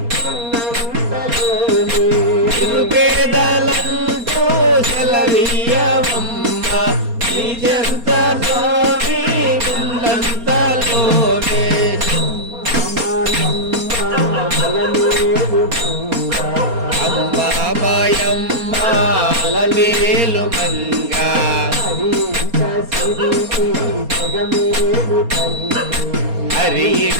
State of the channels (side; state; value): left; late; 4.3 ms